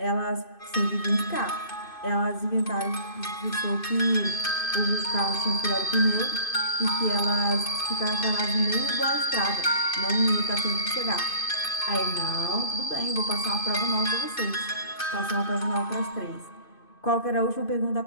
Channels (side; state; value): right; late; 2.5 ms